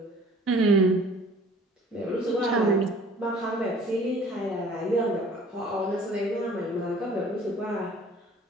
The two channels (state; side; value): normal; both; correlation 0.51